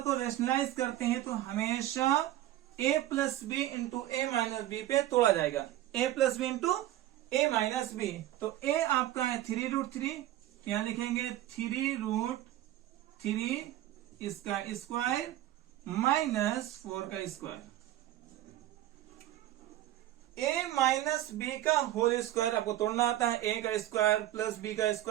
को रेशनलाइज करते हैं तो हमेशा a plus B into A minus B पे तोड़ा जाएगा, a plus B into A minus B. तो a आपका है 3√3, यहाँ लिखेंगे 3√3 इसका स्क्वायर माइनस 4 का स्क्वायर। a माइनस बी का होल स्क्वायर आपको तोड़ना आता है, a का स्क्वायर प्लस b का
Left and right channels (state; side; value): quieter; left; 13.9 dB